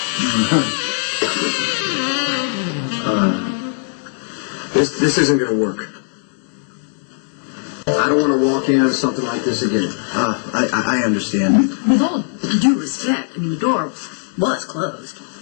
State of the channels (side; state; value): right; silent; digital silence